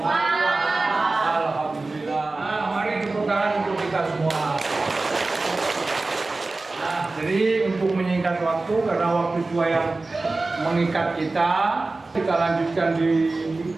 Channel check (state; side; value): quieter; left; 3.4 dB